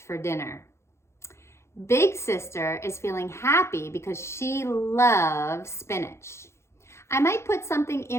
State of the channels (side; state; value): right; late; 0.13 ms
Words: for dinner. Big sister is feeling happy because she loves spinach. I might put something